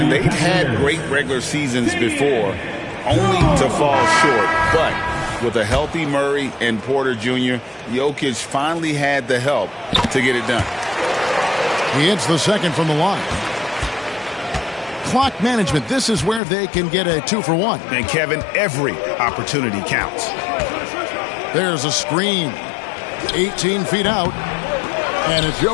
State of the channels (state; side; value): drops out; right; at 16.4 s